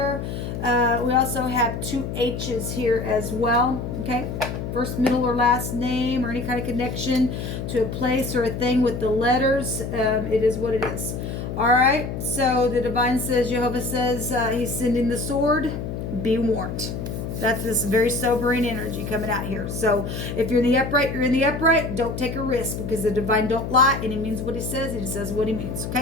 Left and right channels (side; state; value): left; noise; hum, 5 dB below the sound